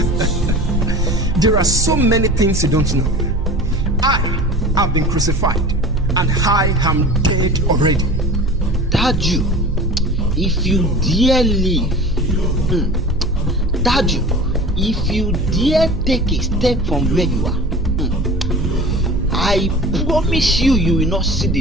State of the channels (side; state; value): right; noise; hum, 6 dB below the sound